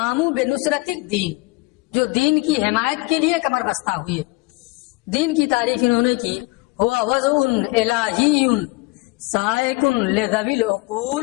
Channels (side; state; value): right; quieter; 24.6 dB